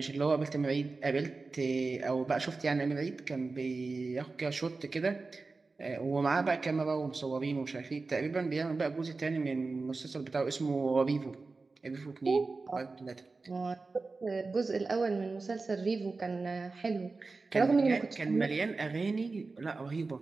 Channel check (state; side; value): quieter; left; 3.9 dB